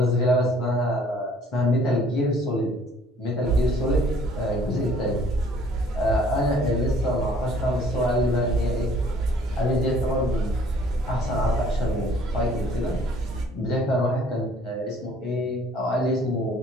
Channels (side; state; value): both; normal; correlation 0.57